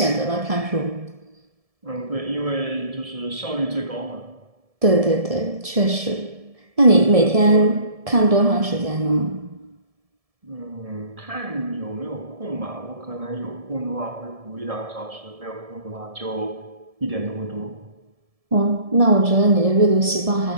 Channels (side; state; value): left; late; 1.7 ms